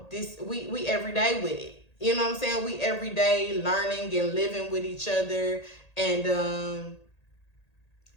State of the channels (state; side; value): late; right; 1.8 ms